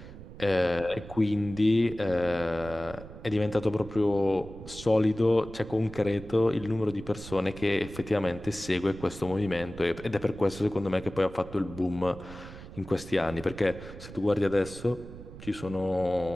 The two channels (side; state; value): right; noise; rumble, 15 dB below the sound